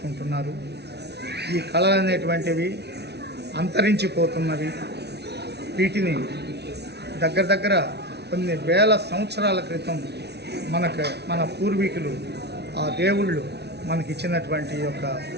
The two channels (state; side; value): late; left; 0.49 ms